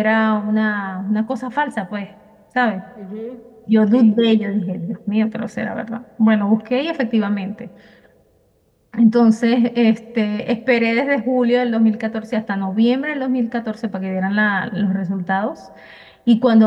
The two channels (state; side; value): identical; both; correlation 1.00